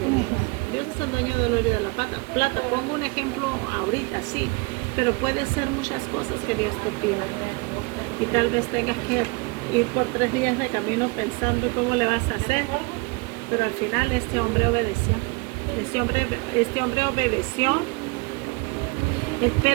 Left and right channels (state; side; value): quieter; left; 27.8 dB